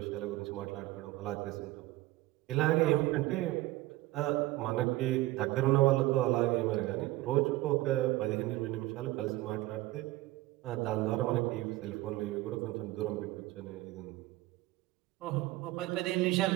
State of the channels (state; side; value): quieter; left; 18.1 dB